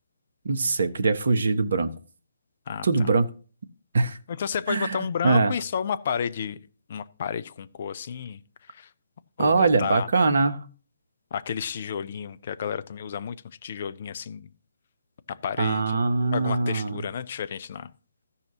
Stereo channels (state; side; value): inverted; both; correlation -0.79